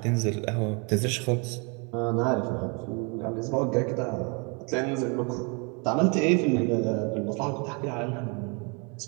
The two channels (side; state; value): left; quieter; 32.9 dB